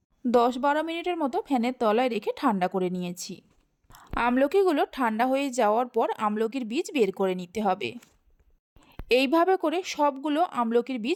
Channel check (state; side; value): identical; both; correlation 1.00